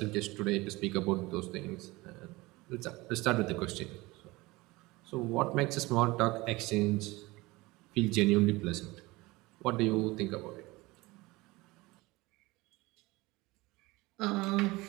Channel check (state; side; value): quieter; left; 21.6 dB